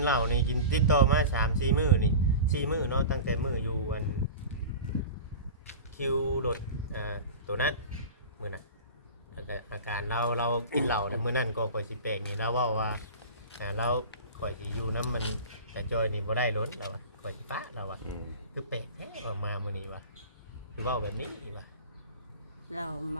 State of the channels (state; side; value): inverted; both; correlation -0.33